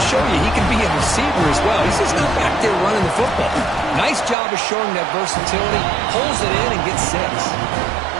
show you he can be a receiver as well. He's just not back there running the football. Nice job of showing that versatility. Pulls it in and gets 6.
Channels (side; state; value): left; drops out; at 4.4 s